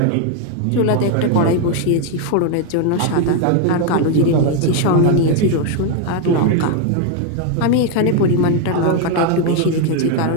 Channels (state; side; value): different; both; correlation 0.01